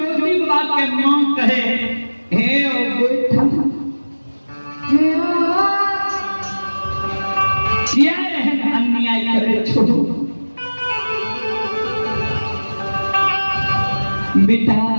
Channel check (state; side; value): inverted; both; correlation -1.00